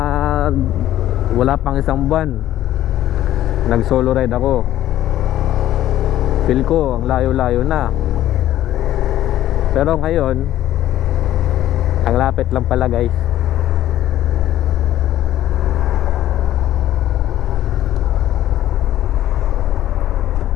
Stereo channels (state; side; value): quieter; right; 13.1 dB